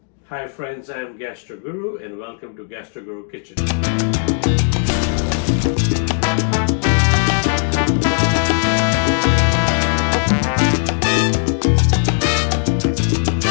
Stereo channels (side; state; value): right; silent; digital silence